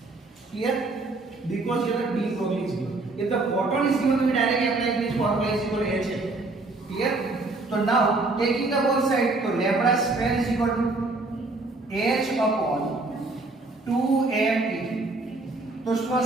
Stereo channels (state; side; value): quieter; left; 3.3 dB